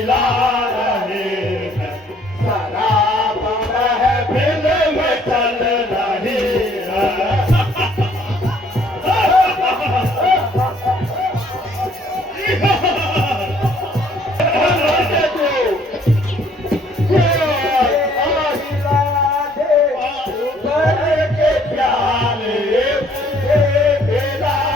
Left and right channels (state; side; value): normal; both; correlation 0.62